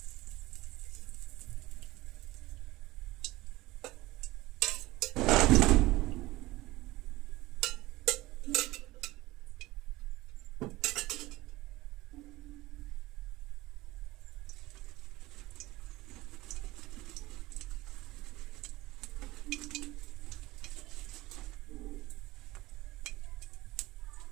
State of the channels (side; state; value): left; quieter; 19.1 dB